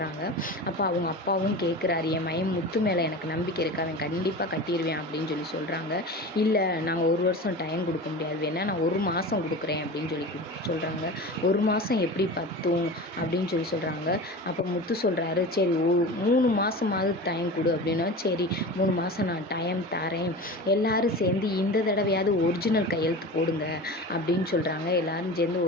அப்போ அவங்க அப்பாவும் கேட்குறாரு, என் மயம் முத்து மேலே எனக்கு நம்பிக்கை இருக்கு, அவன் கண்டிப்பாக கட்டிடுவேன் அப்படின்னு சொல்கிறாங்க. இல்லை, நாங்கள் ஒரு வருஷம் டைம் கொடுக்க முடியாது, வேணா நான் 1 மாதம் கொடுக்குறேன் அப்படின்னு சொல்கிறாங்க. 1 மாதம் எப்படி பத்தும் அப்படின்னு சொல்கிறாங்க. அப்போ முத்து சொல்கிறாரு, சரி 3 மாதமாவது டைம் கொடு அப்படின்னா, சரி 3 மாதம் நான் டைம் தரேன், எல்லோரும் சேர்ந்து இந்த தடவையாவது ஒரிஜினல் கையெழுத்து போடுங்க அப்படின்னு சொல்கிறாங்க. எல்லோரும் சேர்ந்து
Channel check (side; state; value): both; normal; correlation 0.32